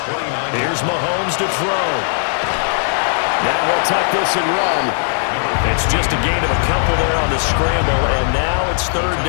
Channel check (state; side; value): silent; right; digital silence